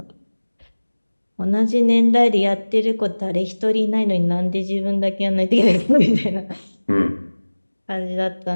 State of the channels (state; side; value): inverted; both; correlation -1.00